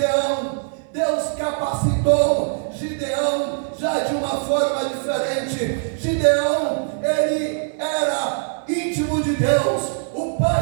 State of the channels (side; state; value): left; silent; digital silence